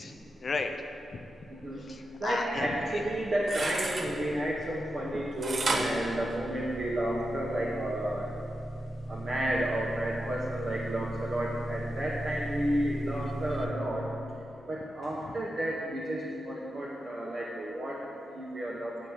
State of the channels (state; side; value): normal; both; correlation 0.88